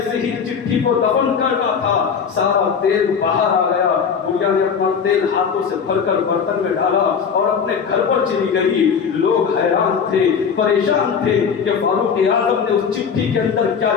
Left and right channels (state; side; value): quieter; right; 6.5 dB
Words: ہی چٹھی کو دفن کرنا تھا سارا تیل باہر آ گیا. بڑھیا نے اپنا تیل ہاتھوں سے بھر کر برتن میں ڈالا اور اپنے گھر پر چلی گئی. لوگ حیران تھے, پریشان تھے کہ فاروق اعظم نے اس چٹھی کے اندر کیا